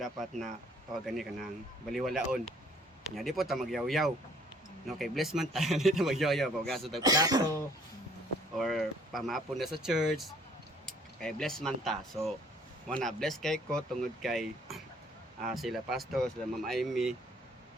na tawagan ni kanang baliwalaon. Nya di po ta magyaw-yaw. No, kay bless man tayo dito magyoyo pagaso tag plato or pamapon na sa church kay bless man ta so wana bless kay ko tungod kay sila pastor sila Ma'am Amy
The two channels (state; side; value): normal; both; correlation 0.59